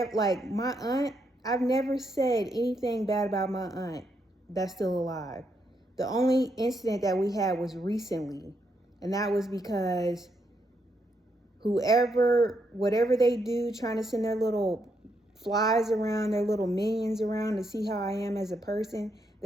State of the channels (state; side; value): normal; both; correlation 0.78